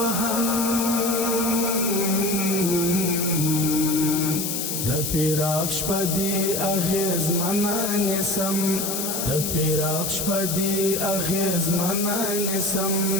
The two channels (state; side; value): noise; left; hiss, 2 dB below the sound